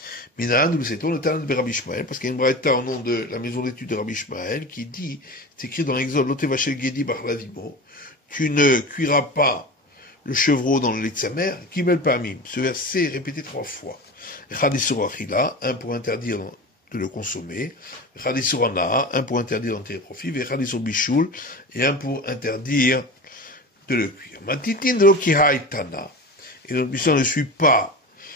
Minan, nous le sait-on, le talent de Rabbi Ishmael, parce qu'il y a une braïta au nom de la maison d'études de Rabbi Ishmael, qui dit, c'est écrit dans l'Exode, Lotevachel Gedi Bachlavimo, tu ne cuiras pas le chevreau dans le lait de sa mère, Kimel Pamim. Ce verset est répété 3 fois. Echadisur Achila, un pour interdire de le consommer, Echadisur Ana, un pour interdire d'en tirer profit, Echadisur Bishul, et un pour interdire de le cuire. Matitin de l'Okihaïtana. Et notre mission ne suit pas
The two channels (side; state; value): both; normal; correlation 0.30